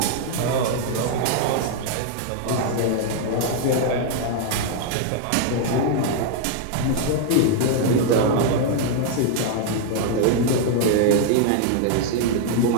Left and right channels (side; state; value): both; different; correlation 0.00